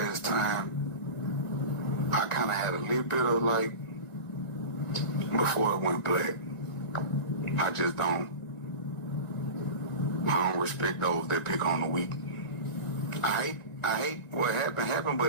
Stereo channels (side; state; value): right; late; 1.9 ms